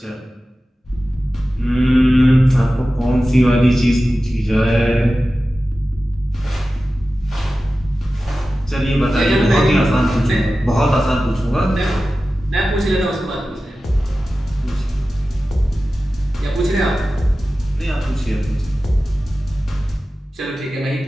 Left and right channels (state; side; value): normal; both; correlation 0.95